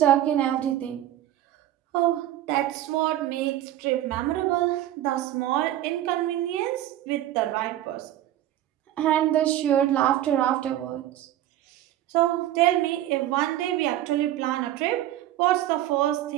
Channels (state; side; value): quieter; left; 13.2 dB